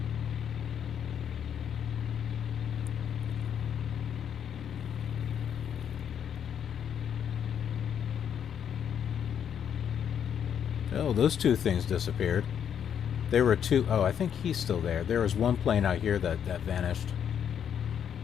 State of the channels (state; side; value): quieter; right; 8.5 dB